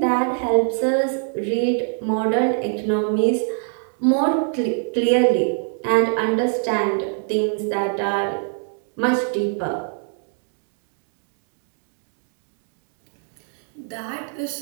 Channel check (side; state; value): left; silent; 57 dB below the other